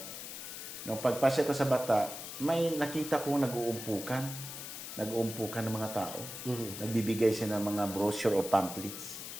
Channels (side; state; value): left; noise; hiss, 9 dB below the sound